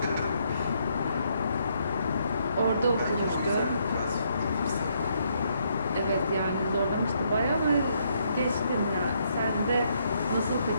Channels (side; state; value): both; inverted; correlation -0.73